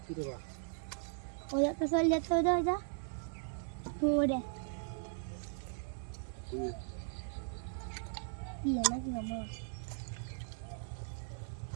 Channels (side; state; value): left; silent; digital silence